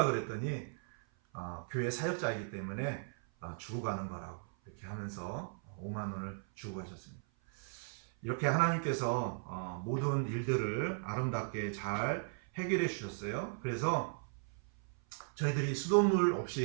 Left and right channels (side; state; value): left; silent; 53 dB below the other